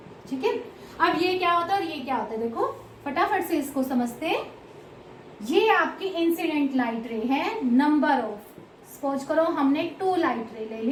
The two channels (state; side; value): identical; both; correlation 1.00